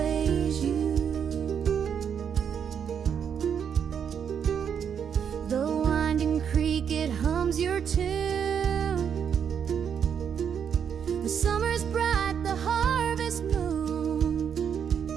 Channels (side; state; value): left; quieter; 7.7 dB